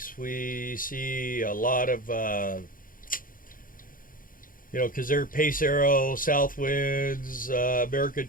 We see a lot of, because they're Pace Arrow, Southwinds, American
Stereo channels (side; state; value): right; late; 0.40 ms